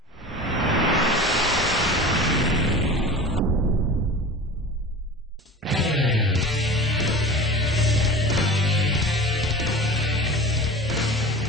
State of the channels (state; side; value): normal; both; correlation 0.35